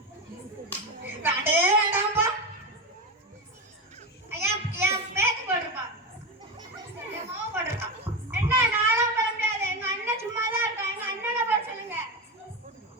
வேண்டே வேண்டாம்ப்பா. ஐயா என் பேத்து போட்டிருப்பா. என் மாவு போட்டிருப்பான். என்ன நானும் போட முடியாது. எங்க அண்ணன் சும்மா தான் இருக்கான். எங்க அண்ணனை போட சொல்லுங்க.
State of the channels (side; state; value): both; normal; correlation 0.18